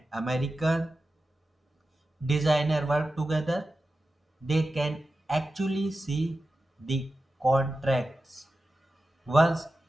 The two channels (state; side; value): normal; both; correlation 0.93